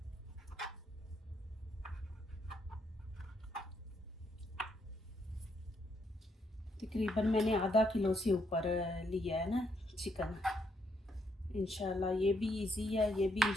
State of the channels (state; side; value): normal; both; correlation 0.75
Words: तकरीबन मैंने आधा किलो से ऊपर लिया है ना चिकन। इंशाल्लाह ये भी इजी है, ये भी